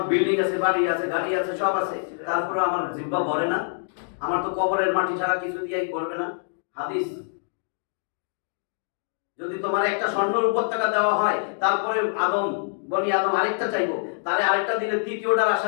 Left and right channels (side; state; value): right; silent; digital silence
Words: বিল্ডিং আছে, বাড়ি আছে, গাড়ি আছে, সব আছে, তারপরে আমার জিহ্বা ভরে না? আমার তো কবরের মাটি ছাড়া কিছু দিয়েই ভরবে না। হাদিস, যদি তোমার একটা স্বর্ণের উপত্যকা দেওয়া হয়, তারপরে বনি আদম আরেকটা চাইবো, তারে আরেকটা দিলে তৃতীয়টার